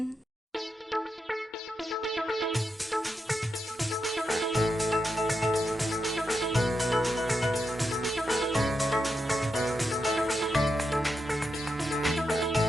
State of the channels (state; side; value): normal; both; correlation 0.86